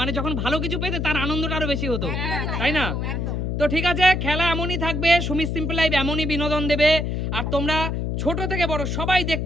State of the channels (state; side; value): noise; left; hum, 1 dB below the sound